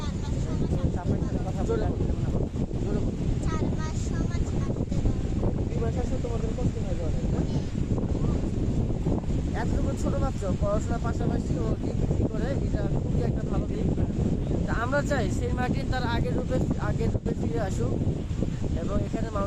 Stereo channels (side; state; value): both; identical; correlation 1.00